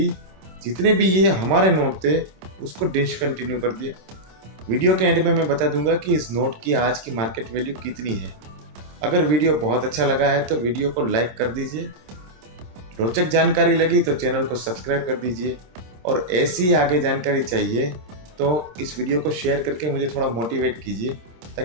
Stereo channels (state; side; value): late; left; 26 ms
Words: जितने भी ये हमारे नोट थे, उसको डिसकंटिन्यू कर दिया। वीडियो के एंड में मैं बता दूंगा कि इस नोट की आज की मार्केट वैल्यू कितनी है। अगर वीडियो बहुत अच्छा लगा है तो वीडियो को लाइक कर दीजिए, रोचक जानकारी लगी तो चैनल को सब्सक्राइब कर दीजिए, और ऐसी आगे जानकारी चाहिए तो इस वीडियो को शेयर करके मुझे थोड़ा मोटिवेट कीजिए,